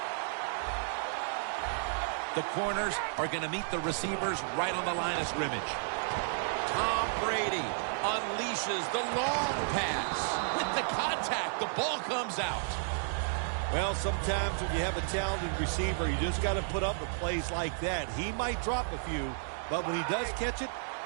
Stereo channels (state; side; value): silent; left; digital silence